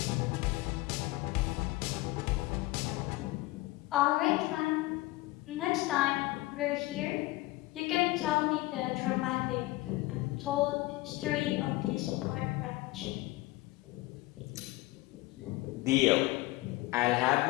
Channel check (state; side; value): quieter; right; 19.6 dB